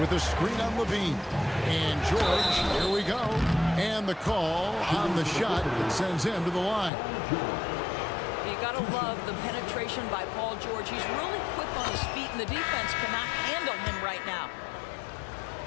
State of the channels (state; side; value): drops out; right; at 6.9 s